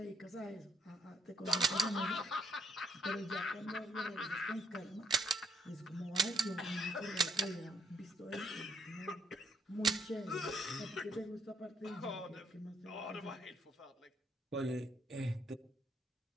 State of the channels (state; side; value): normal; both; correlation 0.70